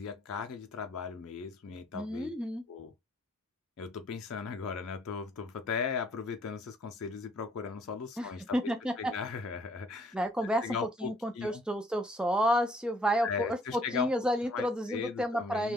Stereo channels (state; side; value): normal; both; correlation 0.64